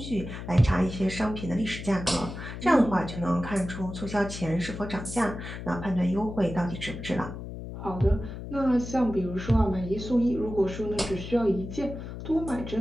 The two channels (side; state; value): left; noise; hum, 9 dB below the sound